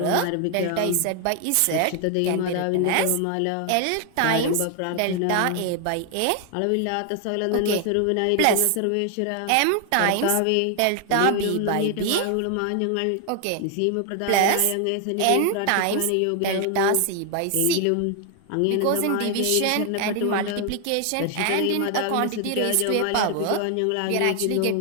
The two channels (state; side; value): different; both; correlation 0.00